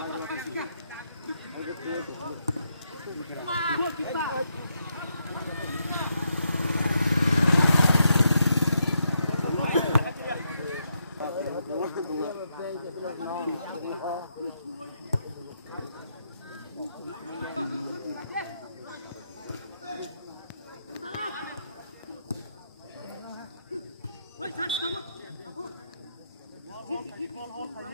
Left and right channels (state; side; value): inverted; both; correlation -0.80